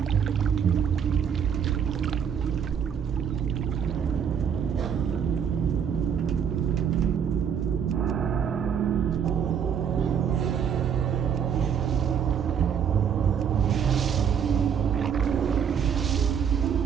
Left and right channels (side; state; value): left; quieter; 7.8 dB